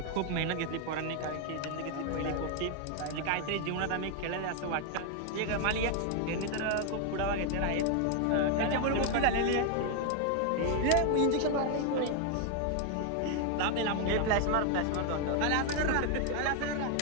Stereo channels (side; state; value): both; different; correlation 0.01